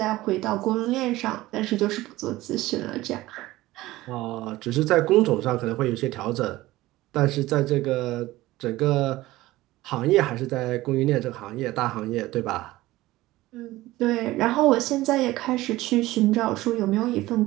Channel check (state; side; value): quieter; left; 17.6 dB